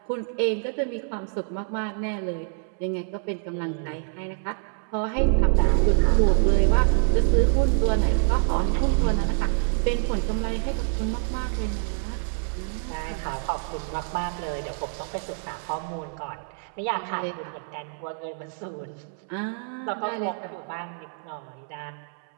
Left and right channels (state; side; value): silent; left; 61 dB below the other